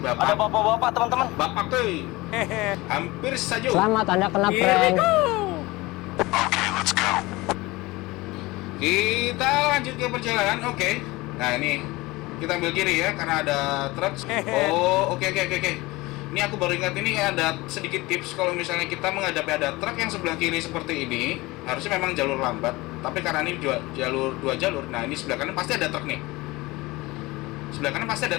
bapak? Ada bapak-bapak teman-teman. Bapak tuh hampir saja. Selamat, Anda kena prank. Kita lanjut ke perjalanan. Oke. Nah ini kita ambil kiri ya karena ada truk. Oh oke. Ini aku baru ingat, ini ada sedikit tips kalau misalnya kita menghadapi ada truk yang sebelah kiri seperti ini, harusnya memang jalur lambat. Tapi karena ini dua jalur, nah ini sebelah kanan pasti ada truk nih. Sebelah kanan pasti ada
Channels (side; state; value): right; quieter; 21.4 dB